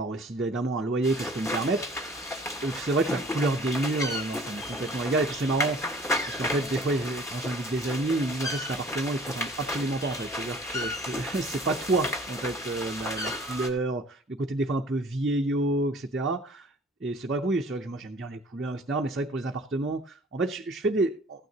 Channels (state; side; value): normal; both; correlation 0.51